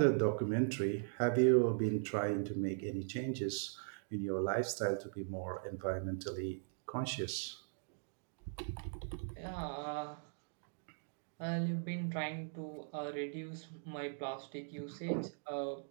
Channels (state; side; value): silent; left; digital silence